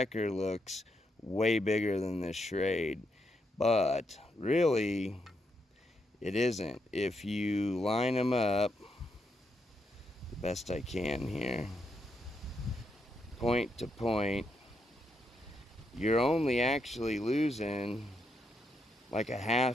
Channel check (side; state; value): both; normal; correlation 0.80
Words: looks way bigger than the Schrade, but really it isn't. If you line them up the best I can here, point to point, you're only actually losing like a